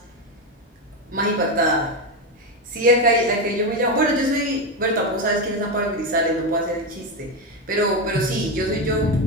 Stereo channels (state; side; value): normal; both; correlation 0.12